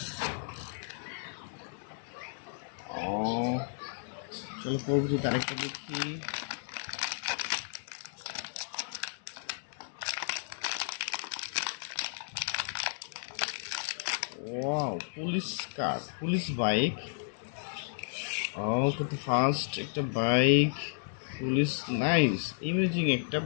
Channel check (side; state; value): right; silent; digital silence